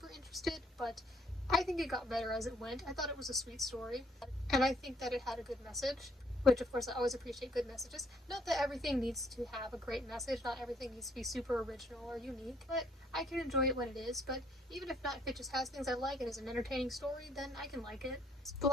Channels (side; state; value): both; normal; correlation 0.66